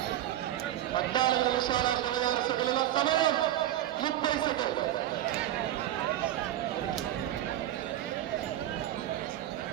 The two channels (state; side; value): quieter; left; 12.8 dB